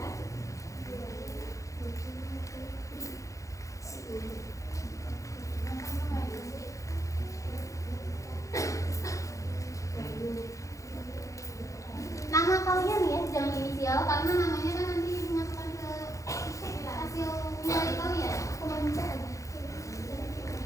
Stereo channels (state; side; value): late; right; 0.15 ms